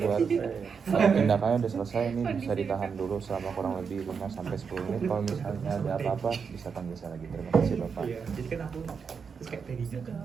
tindakannya udah selesai, ini bisa ditahan dulu selama kurang lebih 5 sampai 10 menit. Kalau misalnya ada apa-apa bisa panggil saya lagi. Terima kasih Bapak. iya jadi kan aku terus kayak tadinya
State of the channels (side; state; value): left; quieter; 6.0 dB